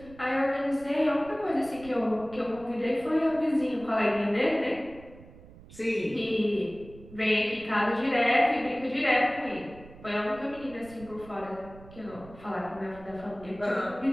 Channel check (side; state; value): right; noise; rumble, 20 dB below the sound